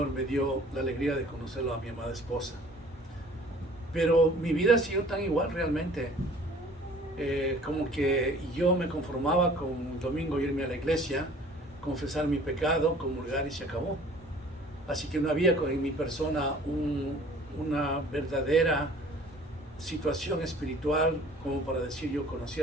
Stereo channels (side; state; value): both; normal; correlation 0.51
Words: me dio la alegría de conocerlo a mi amada esposa. Pero mi vida ha sido tan igual realmente, como que yo me conformaba con un domingo irme a la iglesia, confesar mi pecado, comulgar y se acabó. Así que no había en mi persona una verdadera situación espiritual como para decir yo conocí